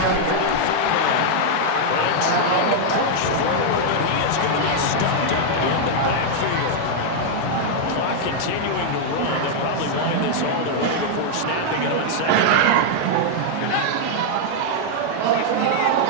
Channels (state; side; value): different; both; correlation -0.01